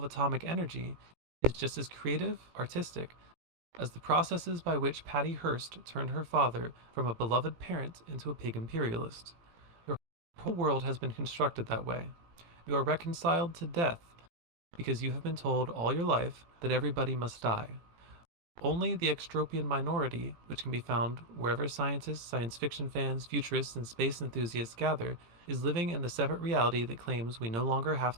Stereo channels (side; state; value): left; late; 18 ms